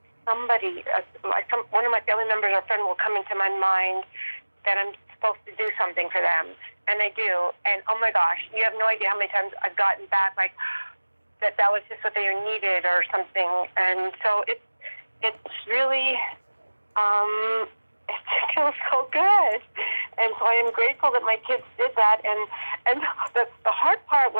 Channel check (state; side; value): inverted; both; correlation -1.00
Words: somebody, one of my family members or friend will come into my mind that I'm supposed to do something for them. And I do. And oh my gosh, you have no idea how many times I've gotten back like that was just what they needed or something. And so it's really it feels so good. And so I am grateful that my kids did that. And the hard part